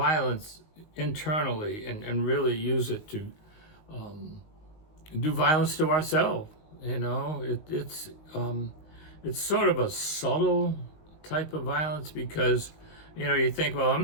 internally and really use it to do violence to ourselves. It's sort of a subtle type of violence because you think, well, I'm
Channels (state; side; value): late; right; 19 ms